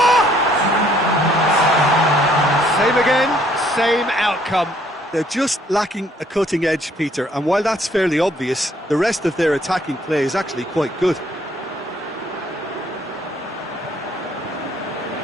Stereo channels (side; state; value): both; normal; correlation 0.64